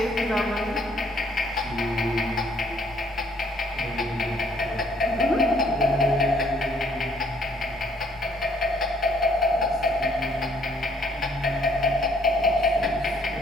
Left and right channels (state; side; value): noise; left; rumble, 24 dB below the sound